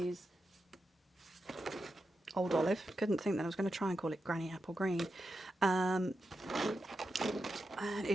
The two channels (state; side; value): normal; both; correlation 0.88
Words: Old Olive. Couldn't think that I was going to try and call it Granny Apple Green. And